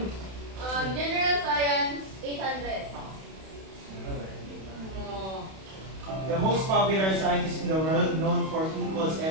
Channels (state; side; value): late; left; 31 ms